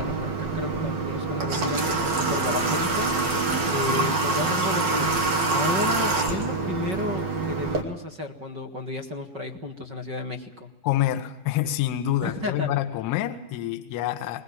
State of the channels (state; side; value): late; left; 5.4 ms